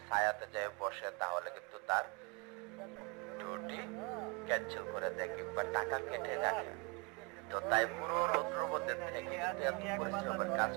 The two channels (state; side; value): quieter; left; 30.0 dB